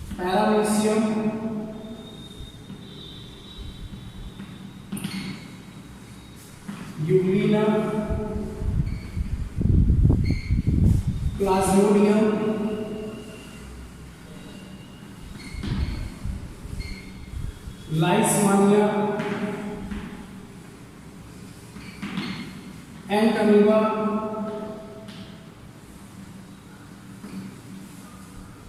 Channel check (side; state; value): both; identical; correlation 1.00